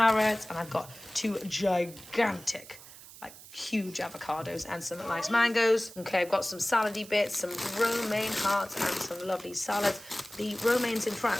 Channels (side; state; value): right; noise; hiss, 18 dB below the sound